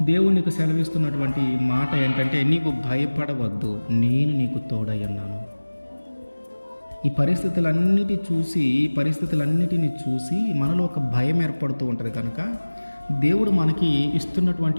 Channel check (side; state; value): both; inverted; correlation -1.00